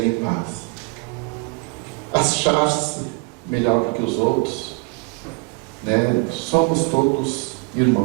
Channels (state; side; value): quieter; left; 30.6 dB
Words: em paz. Achar-se melhor do que os outros, somos todos